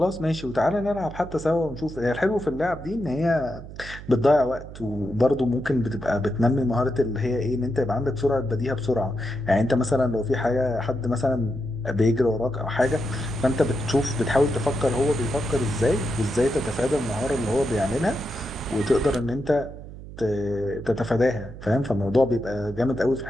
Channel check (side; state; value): right; noise; hum, 13 dB below the sound